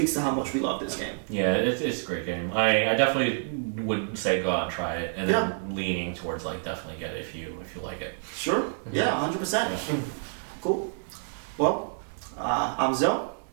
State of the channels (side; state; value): left; silent; digital silence